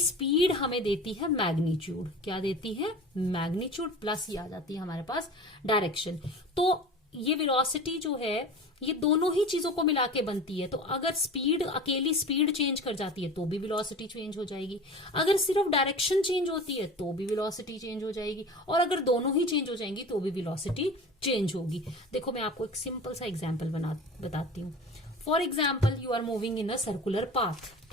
हमें देती है मैग्नीट्यूड, क्या देती है? मैग्नीट्यूड, प्लस ये आ जाती है हमारे पास डायरेक्शन। तो ये वेलोसिटी जो है ये दोनों ही चीजों को मिला के बनती है। तो अगर स्पीड, अकेली स्पीड चेंज कर जाती है तो भी वेलोसिटी चेंज हो जाएगी, अगर सिर्फ डायरेक्शन चेंज होती है तो भी वेलोसिटी चेंज हो जाएगी, और अगर दोनों ही चेंज हो जाएंगी तो भी वेलोसिटी चेंज होगी। देखो मैं आपको एक सिंपल सा एग्जाम्पल बताती हूँ। For example you are moving in a circular path,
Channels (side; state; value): both; normal; correlation 0.36